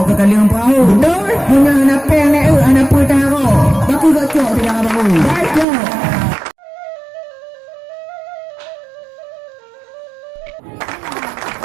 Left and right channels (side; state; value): left; drops out; at 5.7 s